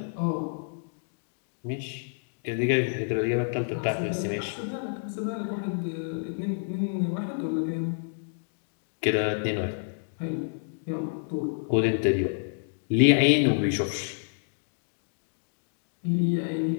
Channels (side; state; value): right; silent; digital silence